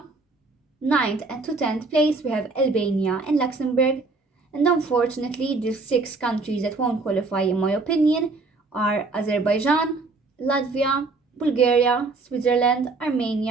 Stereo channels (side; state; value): left; quieter; 3.8 dB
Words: 9th and to 10th place, we have Albania and Luxembourg. And unfortunately, the 6 countries that won't qualify, in my opinion, are Azerbaijan, Latvia, Bulgaria, Switzerland,